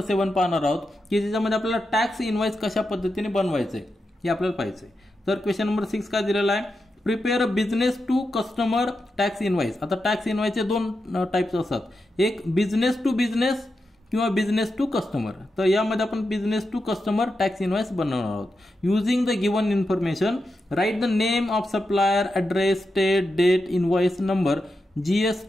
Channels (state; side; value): normal; both; correlation 0.88